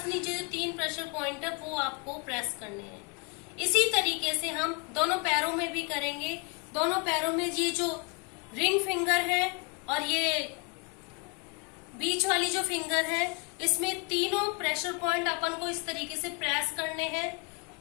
नीचे जो 3 प्रेशर पॉइंट है वो आपको प्रेस करने हैं। इसी तरीके से हम दोनों पैरों में भी करेंगे। दोनों पैरों में ये जो रिंग फिंगर है और ये बीच वाली जो फिंगर है, इसमें तीनों प्रेशर पॉइंट अपन को इस तरीके से प्रेस करने हैं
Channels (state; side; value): quieter; right; 33.1 dB